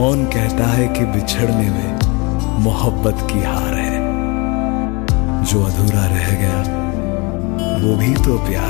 कहता है कि बिछड़ने में मोहब्बत की हार है, जो अधूरा रह गया वो भी तो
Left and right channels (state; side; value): quieter; right; 28.5 dB